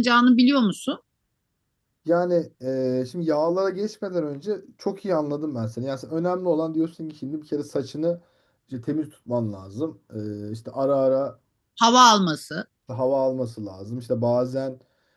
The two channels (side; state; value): both; identical; correlation 1.00